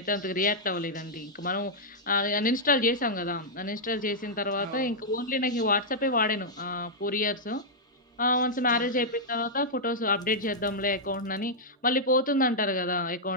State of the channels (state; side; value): normal; both; correlation -0.07